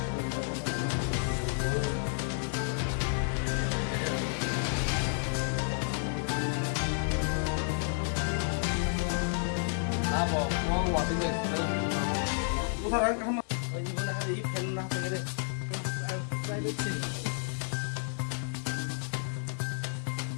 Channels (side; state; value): right; silent; 57 dB below the other